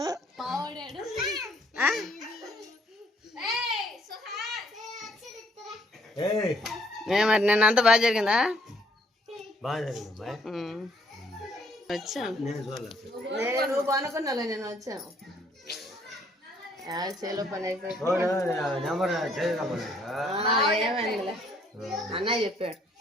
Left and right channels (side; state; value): both; normal; correlation 0.65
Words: మావాడాడు. మరి నిన్న అంతా బాగా జరిగిందా? వచ్చాను. నువ్వు అనుకున్నాలే, నేను వచ్చాను. చేలో పని అయిపోయి ఏమైందిలే అన్నయ్య చెప్పాడు.